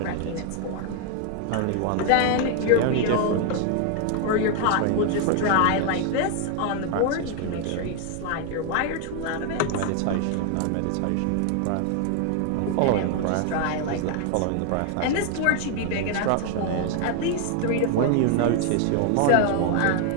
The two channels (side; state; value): both; different; correlation 0.00